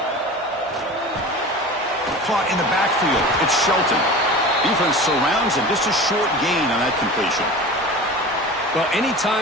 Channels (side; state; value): both; normal; correlation 0.35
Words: Caught in the backfield. It's Shelton. Defense surrounds him. Just a short gain on that completion. Well,